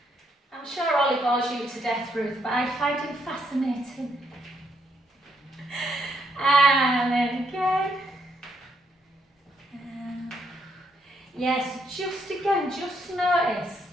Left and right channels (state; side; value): normal; both; correlation 0.74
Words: I'm sure Ollie bores you to death, Ruth, but I find him fascinating. And then again. Yes, just again, just notice